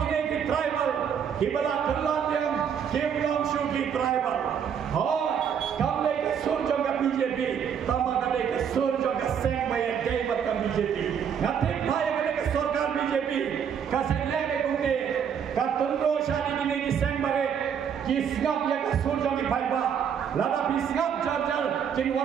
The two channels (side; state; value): left; quieter; 7.8 dB